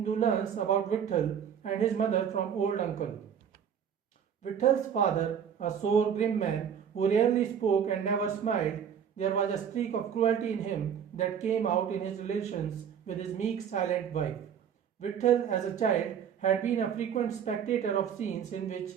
learns about Vitthal and his mother from old uncle. Vithal's father, a sore, grim man who rarely spoke and never smiled, there was a streak of cruelty in him that came out in his relations with his meek, silent wife. Vitthal, as a child, had been a frequent spectator of scenes in which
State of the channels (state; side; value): quieter; left; 8.1 dB